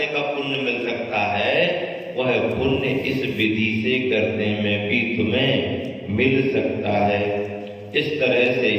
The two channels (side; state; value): both; identical; correlation 1.00